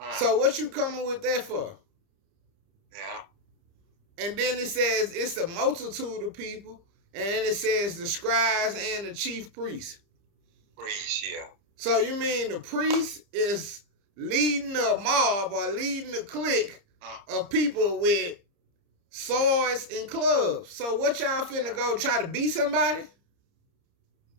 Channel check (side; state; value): left; late; 30 ms